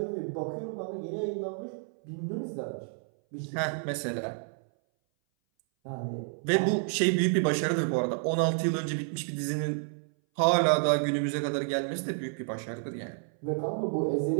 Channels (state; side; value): silent; left; 58 dB below the other